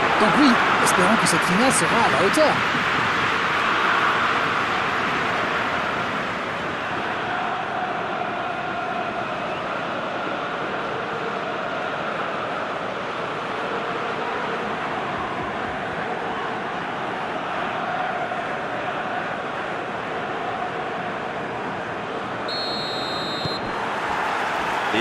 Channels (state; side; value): identical; both; correlation 1.00